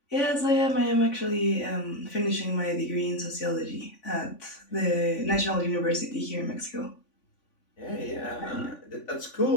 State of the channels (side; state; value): right; late; 3.5 ms